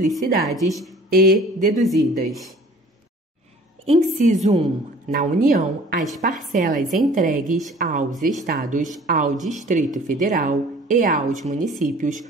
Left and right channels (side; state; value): both; normal; correlation 0.49